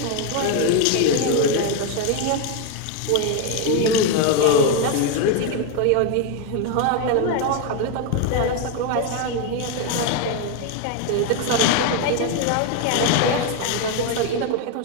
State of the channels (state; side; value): different; both; correlation 0.01